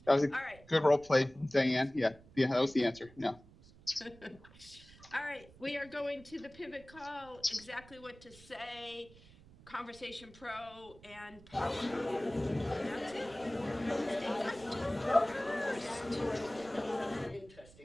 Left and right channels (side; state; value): right; noise; rumble, 22 dB below the sound